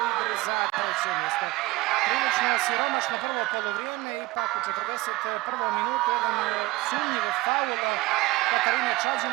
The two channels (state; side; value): quieter; left; 20.4 dB